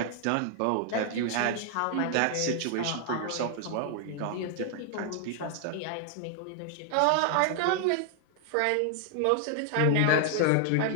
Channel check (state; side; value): different; both; correlation 0.00